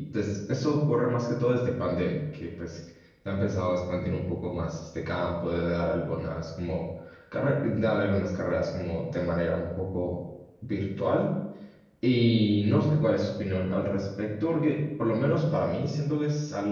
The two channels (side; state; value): both; identical; correlation 1.00